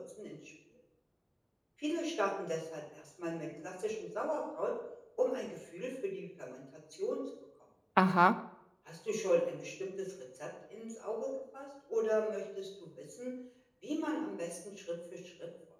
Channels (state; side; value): identical; both; correlation 1.00